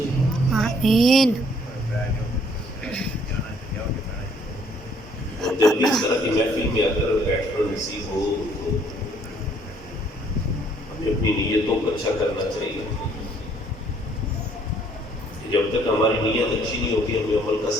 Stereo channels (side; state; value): both; normal; correlation 0.63